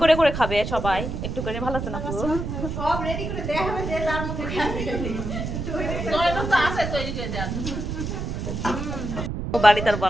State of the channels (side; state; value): right; noise; rumble, 4 dB below the sound